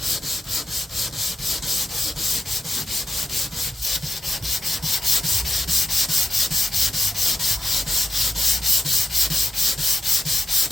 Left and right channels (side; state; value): both; normal; correlation 0.87